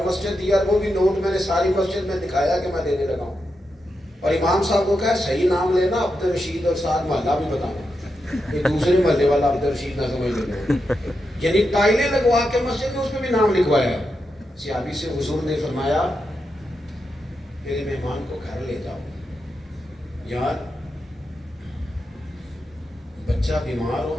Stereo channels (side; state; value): both; normal; correlation 0.87